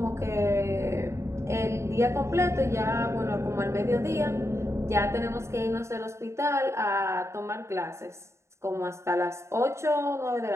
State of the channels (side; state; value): left; late; 0.14 ms